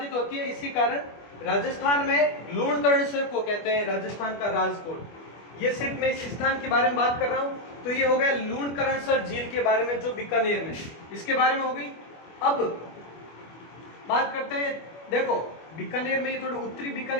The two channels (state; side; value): late; right; 25 ms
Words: होती है, इसी कारण राजस्थान में लूणकरणसर को कहते हैं राजस्थान का राजकोट। ये सिर्फ मैं इस स्थान के बारे में बात कर रहा हूं। तो ये हो गया लूणकरणसर झील के बारे में जो बीकानेर में, इसके बारे में हो गई। अब बात करते हैं, देखो बीकानेर में ये थोड़ा उत्तरी